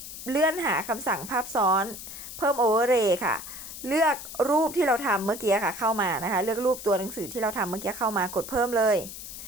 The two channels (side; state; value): left; noise; hiss, 11 dB below the sound